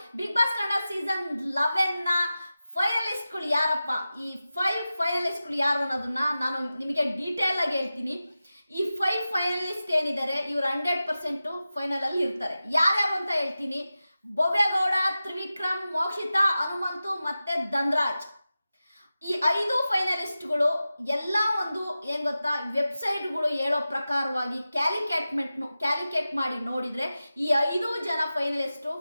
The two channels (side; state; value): both; inverted; correlation -0.94